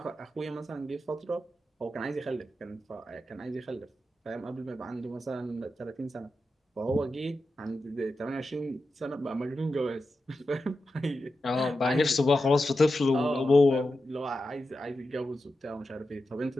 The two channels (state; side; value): normal; both; correlation 0.90